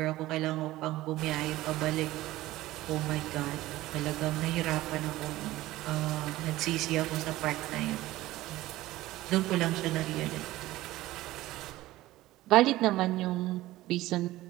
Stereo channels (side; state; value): left; quieter; 16.8 dB